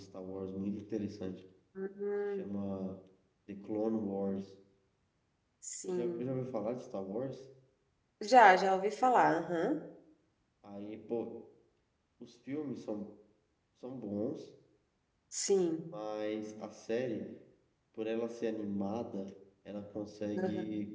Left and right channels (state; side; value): identical; both; correlation 1.00